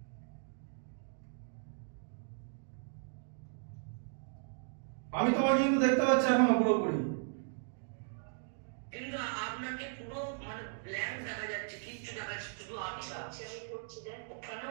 আমি তোমাকে কিন্তু দেখতে পাচ্ছি এখনো পুরোপুরি। কিন্তু আপনাকে পুরো মানে ব্ল্যাঙ্ক দেখা যাচ্ছে, কিচ্ছু দেখা যাচ্ছে, শুধু আচ্ছা আমি করছি দেখ কেন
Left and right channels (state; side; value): silent; left; digital silence